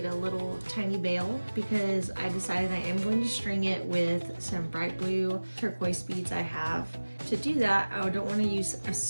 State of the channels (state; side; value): inverted; both; correlation -1.00